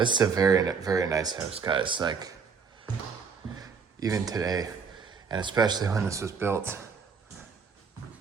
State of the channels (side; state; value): left; quieter; 5.6 dB